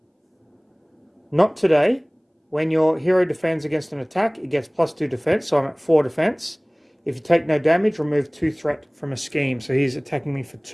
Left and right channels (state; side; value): identical; both; correlation 1.00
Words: not today. When your hero defends against an attack, it gets +2 defense. So I'm at 4 defense. If you take no damage, remove 2 threat from a scheme. So he's attacking me for